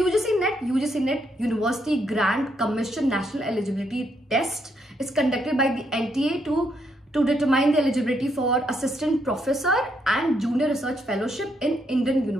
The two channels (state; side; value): normal; both; correlation 0.76